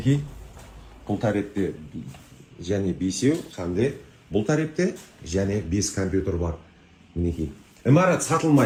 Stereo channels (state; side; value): identical; both; correlation 1.00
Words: бұл тарепте және 5-еу, қандай бұл тарепте және 5 компьютер бар. Мінекей. Имарат